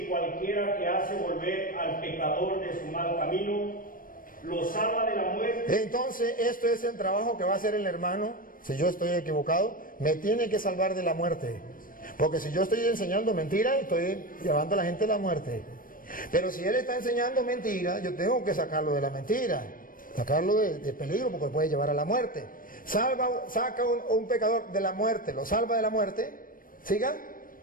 cualquiera que hace volver al pecador de su mal camino, lo salva de la muerte. Entonces, esto es el trabajo que va a hacer el hermano. Si yo estoy equivocado, me tiene que salvar de la muerte. Porque si yo estoy enseñando mentira, estoy llevando a la gente a la muerte. Pero si él está enseñando mentira, yo tengo que sacarlo de la mentira, sacarlo de peligro, porque puede llevar a la muerte. Saca un pecador de la muerte, lo salva de la muerte. ¿Siga?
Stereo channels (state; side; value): late; right; 0.40 ms